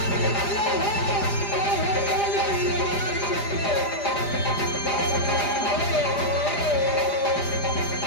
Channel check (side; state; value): right; late; 4.9 ms